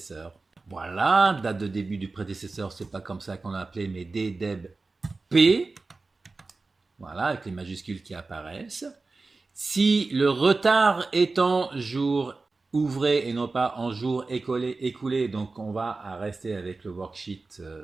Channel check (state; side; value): quieter; left; 3.7 dB